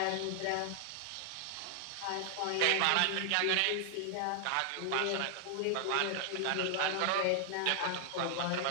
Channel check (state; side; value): different; both; correlation 0.00